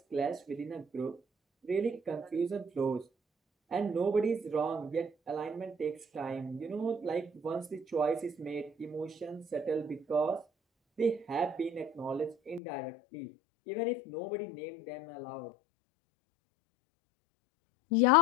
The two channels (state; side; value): drops out; right; at 12.6 s